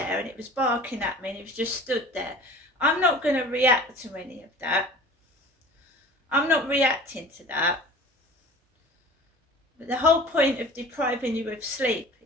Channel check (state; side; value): normal; both; correlation 0.42